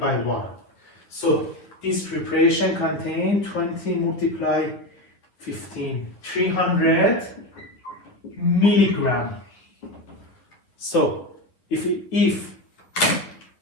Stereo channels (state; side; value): late; right; 10 ms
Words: 1. So this preparation contains 20 multiplied 15, 300 milligram. So if